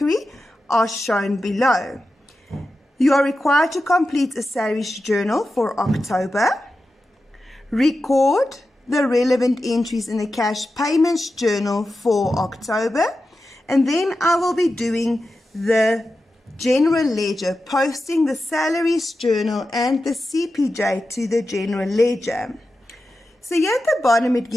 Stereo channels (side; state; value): both; normal; correlation 0.91